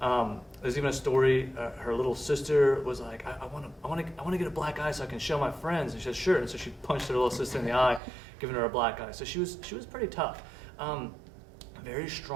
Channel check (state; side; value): drops out; left; at 8.0 s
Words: even a story. Her little sister was like, "I want to get a black eye so I can show my friends." And she said, "Sure." And so she punched her little sister in the eye, giving her a black eye. So she was pretty tough. Very